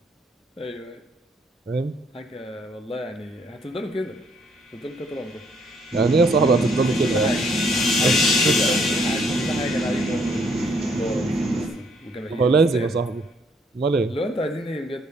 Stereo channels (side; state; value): both; normal; correlation 0.67